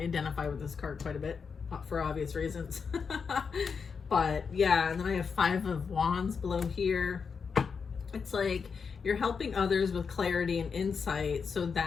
with this card quite a bit for obvious reasons. But yeah, and then I have 5 of Wands below here. It's like you're helping others with clarity and insight so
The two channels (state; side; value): quieter; right; 5.8 dB